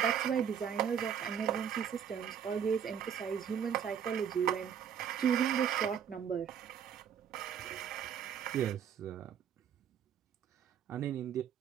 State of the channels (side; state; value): left; quieter; 8.3 dB